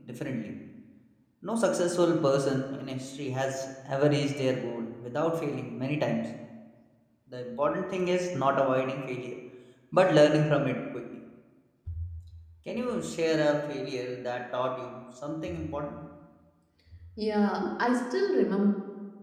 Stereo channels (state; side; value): identical; both; correlation 1.00